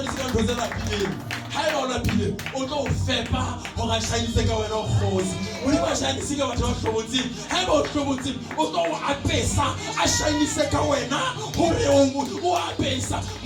ka ntho tsena pile ha e ona pile o tlo fepa ho ga shainise ka wena khosi modimo a shainisa ka batho ba hlobotsi ha e ba o hlobotsi o tlo a pesa a shainise ka wena hore o a pesa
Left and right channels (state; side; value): identical; both; correlation 1.00